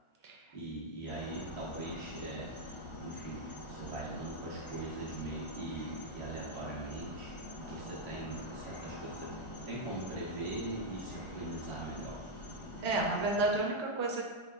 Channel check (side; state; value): right; late; 1.4 ms